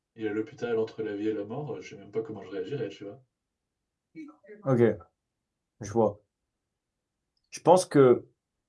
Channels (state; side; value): identical; both; correlation 1.00